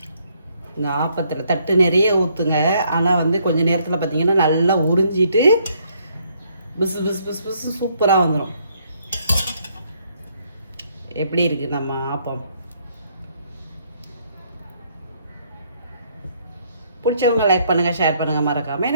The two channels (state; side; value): inverted; both; correlation -0.69